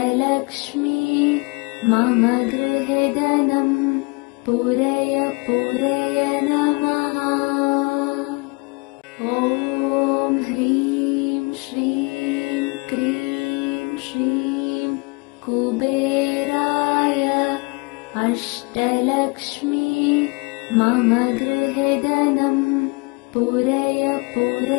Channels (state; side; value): quieter; right; 29.6 dB